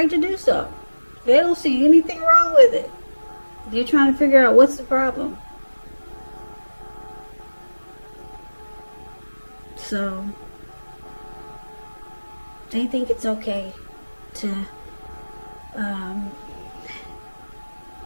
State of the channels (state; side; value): inverted; both; correlation -1.00